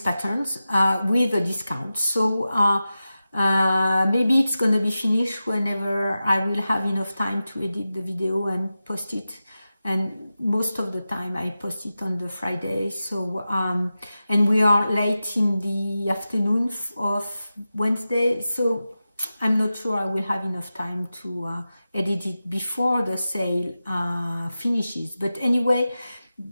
with a discount. So maybe it's going to be finished whenever I will have enough time to edit the video and post it. And most of the time I post it on the Friday. So and we are late in the afternoon of Wednesday, so I'm not sure I will have enough time to edit it before the sale finishes. But anyway,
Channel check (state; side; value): inverted; both; correlation -0.93